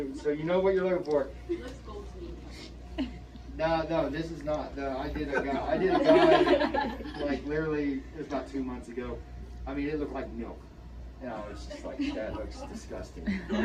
know what you're looking for. It looks gold to me. No, this is not. No, I did a guy like literally it was about 2 months ago. I mean, it looked like milk. And I was just like, that looks disgusting.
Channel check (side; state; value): both; identical; correlation 1.00